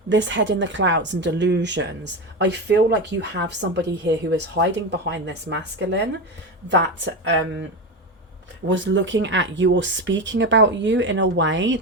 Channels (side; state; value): both; normal; correlation 0.18